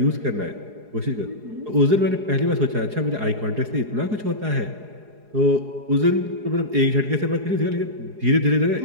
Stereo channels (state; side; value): late; left; 4.8 ms